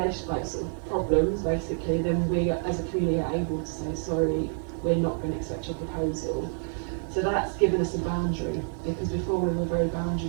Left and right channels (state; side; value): silent; left; 59 dB below the other